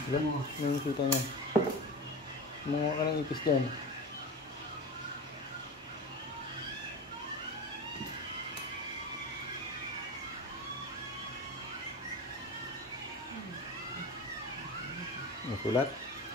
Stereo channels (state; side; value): normal; both; correlation 0.28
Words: Ilan? Ano yung kita niya? Mga ka ng ipis dyan. May sulat?